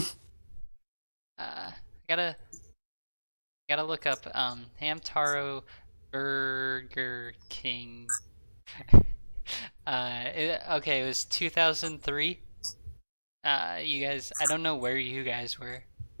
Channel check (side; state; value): both; inverted; correlation -1.00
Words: Gotta look up Hamtaro Burger King. Okay, it was 2003. You guys, I don't know where you guys were.